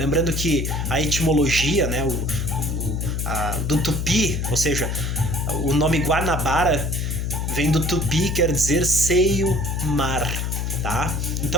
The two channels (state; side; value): noise; left; hum, 1 dB below the sound